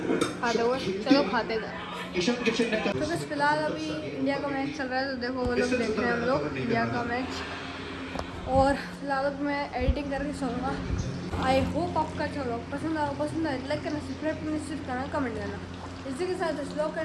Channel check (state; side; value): identical; both; correlation 1.00